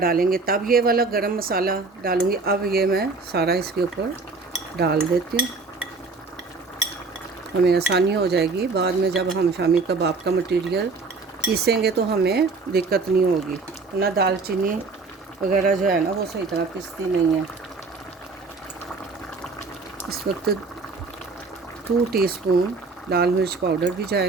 तब ये वाला गरम मसाला डालूँगी। अब ये मैं सारा इसके ऊपर डाल देती हूँ, हमें आसानी हो जाएगी। बाद में जब हम शामी कबाब का मटीरियल पीसेंगे तो हमें दिक्कत नहीं होगी। ना दालचीनी वगैरह जो है ना वो सही तरह पिसती नहीं है। इस वक्त 2 टीस्पून लाल मिर्च पाउडर भी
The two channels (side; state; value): left; quieter; 4.1 dB